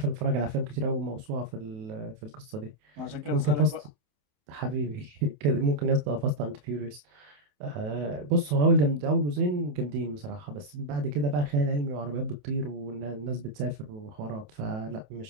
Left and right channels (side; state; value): left; late; 28 ms